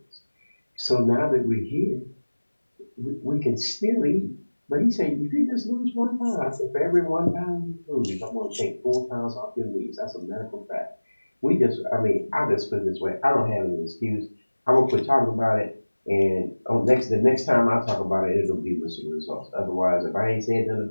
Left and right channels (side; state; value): both; inverted; correlation -1.00